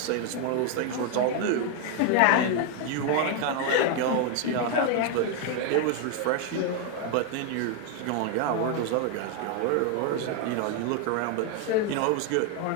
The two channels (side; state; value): both; different; correlation 0.01